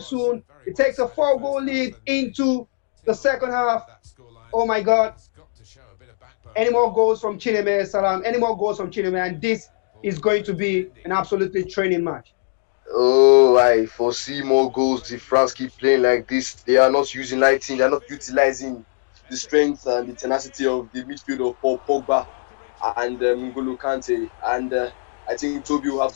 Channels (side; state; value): right; silent; digital silence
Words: It takes a 4-goal lead into the second half. Oh my God. Any more goals from Chineme, Salam? Any more goals from Chineme? And this is going to be an absolutely training match. Oh, I foresee more goals if France keep playing like this. They are not uniting, they are not utilizing the strength and the tenacity of the midfield of Paul Pogba and N'Golo Kante. And I think Toby will